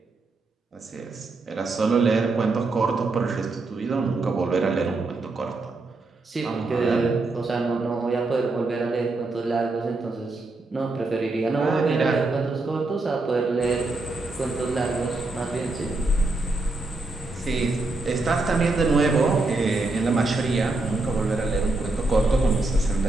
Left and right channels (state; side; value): quieter; left; 3.2 dB